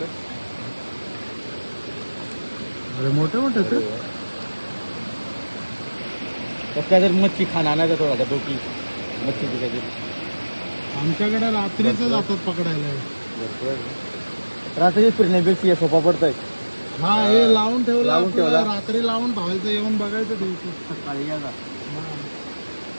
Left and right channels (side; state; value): both; inverted; correlation -1.00